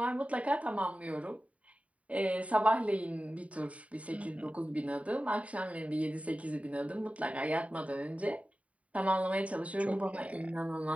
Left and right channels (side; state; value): left; late; 0.067 ms